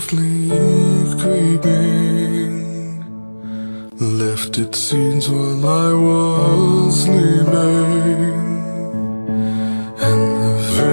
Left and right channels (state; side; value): inverted; both; correlation -1.00